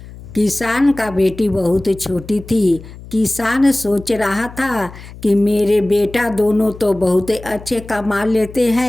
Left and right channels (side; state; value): left; noise; hum, 16 dB below the sound